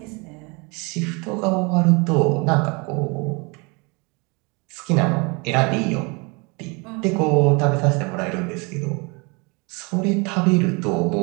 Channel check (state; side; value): quieter; left; 29.5 dB